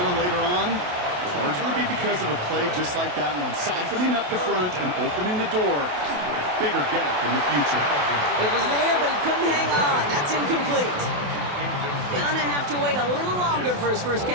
later on, it'll largely be because of a play just like that one, softening up the front and opening the door for a bigger gap in the future. It was there, but he couldn't hang on. That's incomplete. Gonna have to wait a little longer for his first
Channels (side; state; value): left; late; 28 ms